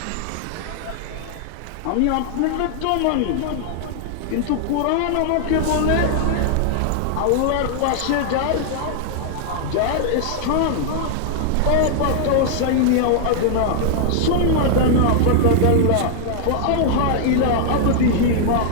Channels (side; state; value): both; different; correlation -0.01